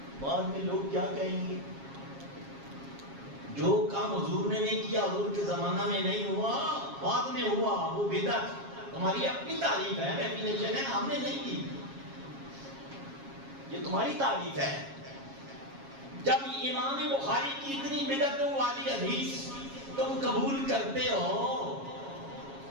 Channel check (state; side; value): late; left; 7.3 ms